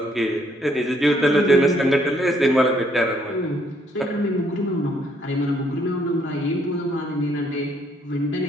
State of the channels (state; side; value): normal; both; correlation 0.68